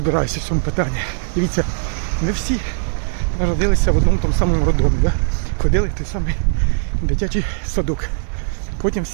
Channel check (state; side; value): silent; left; digital silence